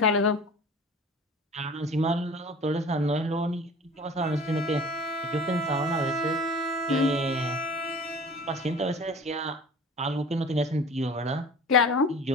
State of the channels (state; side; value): normal; both; correlation 0.42